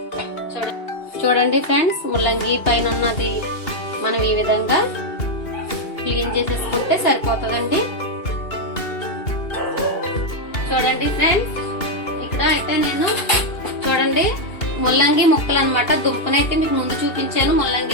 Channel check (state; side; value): late; right; 2.8 ms